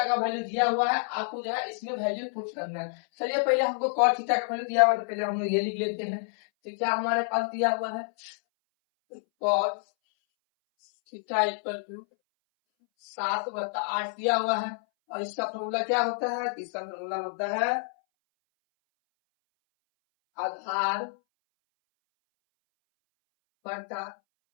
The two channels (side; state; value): right; silent; 59 dB below the other